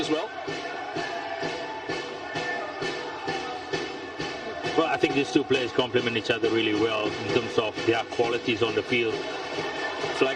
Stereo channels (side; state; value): both; identical; correlation 1.00